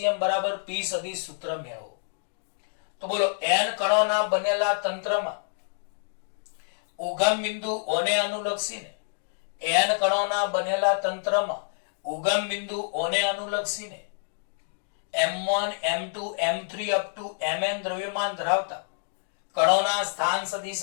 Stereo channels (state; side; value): silent; right; digital silence